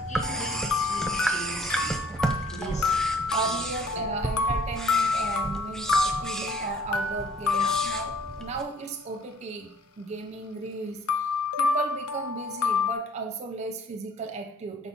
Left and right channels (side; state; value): both; normal; correlation 0.57